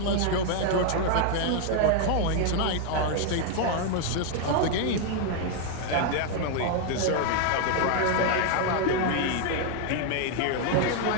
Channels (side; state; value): both; different; correlation 0.00